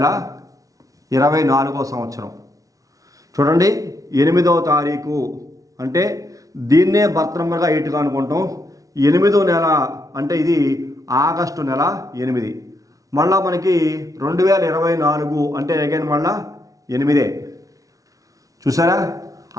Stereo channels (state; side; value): late; left; 0.17 ms